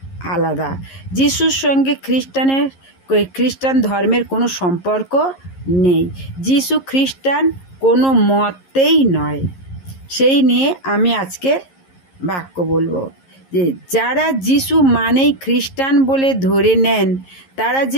আলাদা। যিশুর সঙ্গে খ্রিস্টান ধর্মের কোনো সম্পর্ক নেই। যিশু খ্রিস্টান কোনো মতেই নয়। সেই নিয়ে আমি আজকের বাক্য বলবো যে যারা যিশু মানেই খ্রিস্টান বলে ধরে নেন তারা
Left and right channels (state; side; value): late; right; 11 ms